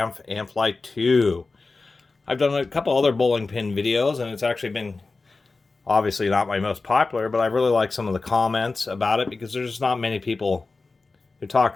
II. I've done a couple other bowling pin videos, and it's actually been obviously not my most popular, but I really like some of the comments about it because there's just not many people who talk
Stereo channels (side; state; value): right; quieter; 3.8 dB